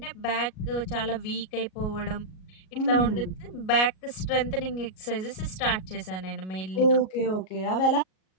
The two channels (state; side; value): late; right; 38 ms